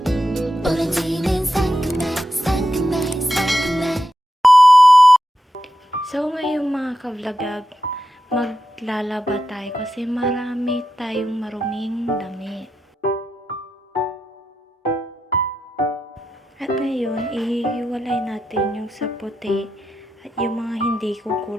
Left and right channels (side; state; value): both; normal; correlation 0.88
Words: 오렌지는 상큼해 상큼해 상큼해. So ngayon mga ka-vlogag, maglalaba tayo kasi marami tayong maruming damit. At ngayon, ihihiwalay natin yung sa puti at yung mga hindi